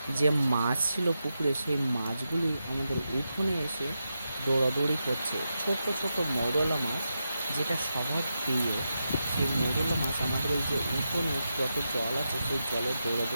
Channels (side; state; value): both; inverted; correlation -0.88